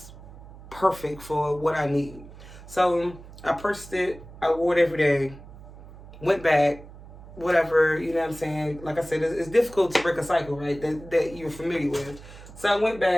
perfect for what I need. So I purchased it. I wore it every day. Went back, whatever, you know what I'm saying? Like I said, it's difficult to break a cycle, right, that you're familiar with. So I went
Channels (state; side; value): noise; right; hum, 17 dB below the sound